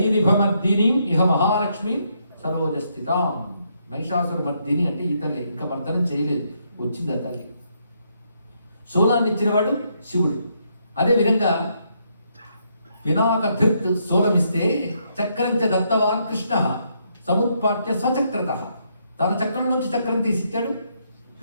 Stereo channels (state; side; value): inverted; both; correlation -0.75